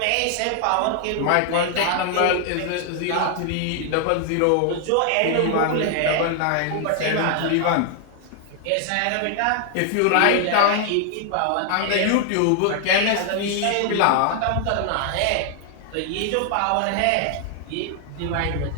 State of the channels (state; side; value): different; both; correlation 0.00